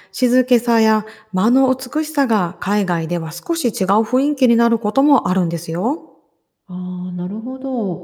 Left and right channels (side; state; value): both; identical; correlation 1.00